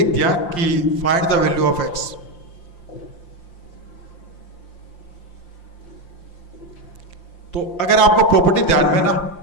दिया कि find the value of x। तो अगर आपको प्रॉपर्टी ध्यान में ना,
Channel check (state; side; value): late; right; 5.7 ms